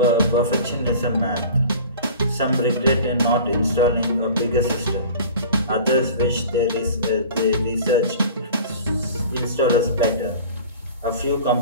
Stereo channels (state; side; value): inverted; both; correlation -0.41